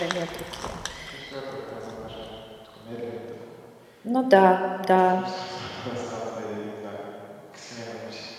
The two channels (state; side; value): identical; both; correlation 1.00